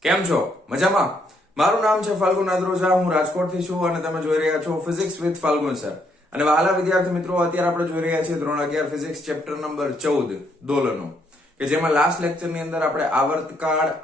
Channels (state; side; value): normal; both; correlation 0.72